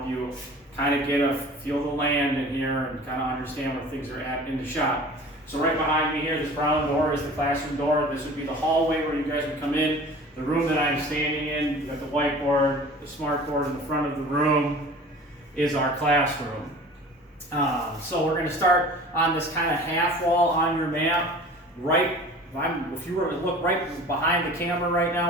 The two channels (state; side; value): normal; both; correlation 0.43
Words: you kind of get a feel of the land in here and kind of understand where things are at in the shop. So right behind me here, this brown door is the classroom door. This would be the hallway where you guys would come in. The room that I'm standing in, you got the whiteboard, the smart board in the front of the room is our classroom. So we're going to start on this kind of half wall on your map. If you were to look right behind the camera right